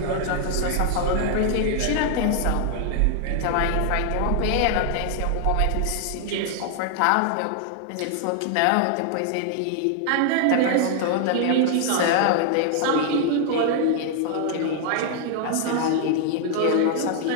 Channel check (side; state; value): both; different; correlation 0.00